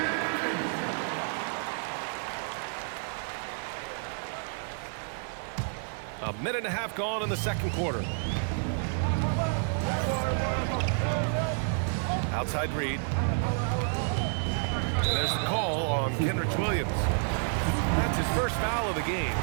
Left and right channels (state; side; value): silent; left; 58 dB below the other